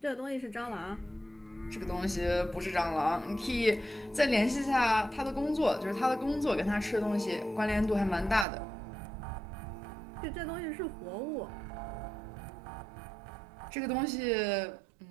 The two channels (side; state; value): left; drops out; at 8.5 s